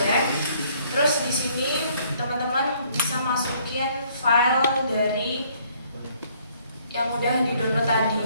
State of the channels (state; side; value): inverted; both; correlation -0.63